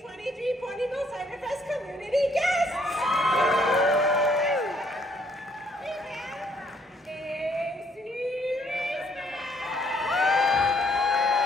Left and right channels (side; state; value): both; normal; correlation 0.67